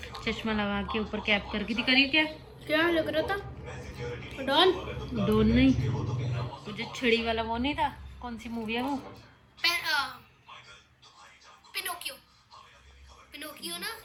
चश्मा लगा के ऊपर कैप करके थी। करिए क्या क्या लग रहा था? डॉन? डॉन नहीं, मुझे छड़ी वाला वो नहीं था। कौन सी मूवी है वो? पिनोकियो। पिनोकियो ना।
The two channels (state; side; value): identical; both; correlation 1.00